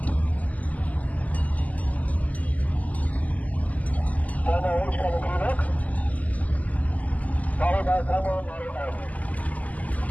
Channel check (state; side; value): late; right; 0.076 ms